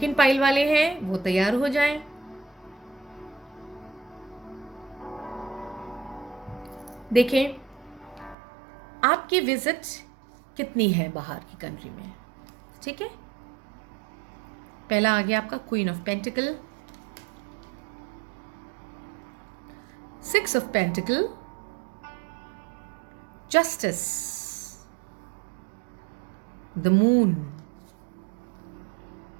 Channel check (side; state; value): left; drops out; at 8.3 s